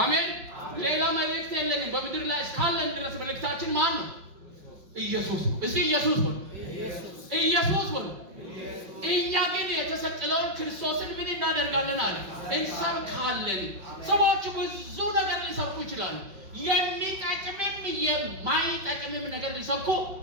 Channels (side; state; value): left; late; 5.5 ms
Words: ሌላ መልእክት የለንም። በምድር ላይ እስካለን ድረስ መልእክታችን ማን ነው? ኢየሱስ ነው። እስኪ ኢየሱስ ነው። እኛ ግን የተሰቀለውን ክርስቶስን ምን እናደርጋለን አለ? እንሰብካለን። ሰዎች ብዙ ነገር ሊሰብኩ ይችላሉ። የሚጠቅምም የማይጠቅምም ነገር ሊሰብኩ